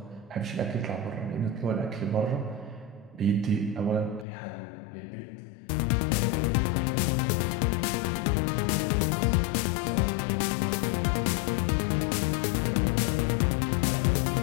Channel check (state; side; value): drops out; right; at 4.2 s